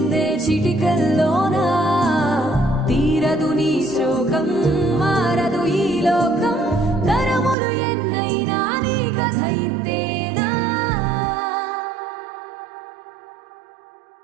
చిటికల్లోనా, తీరదు నీ శోకం, మారదు ఈ లోకం, తరములు ఎన్నైనా నీ కథ ఇంతేనా.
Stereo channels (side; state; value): left; drops out; at 7.6 s